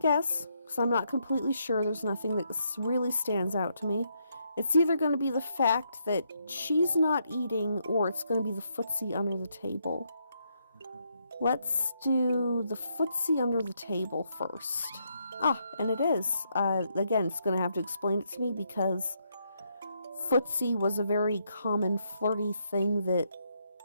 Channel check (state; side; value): inverted; both; correlation -0.77